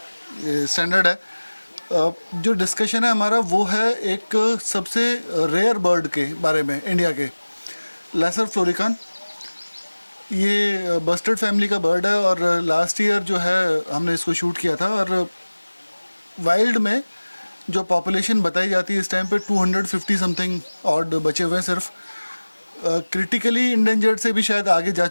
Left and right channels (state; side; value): inverted; both; correlation -1.00